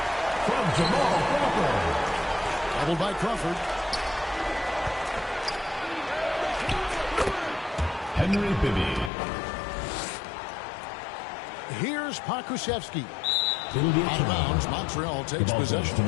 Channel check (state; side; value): drops out; right; at 9.1 s